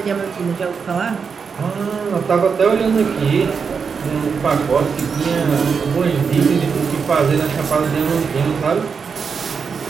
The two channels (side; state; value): left; quieter; 5.8 dB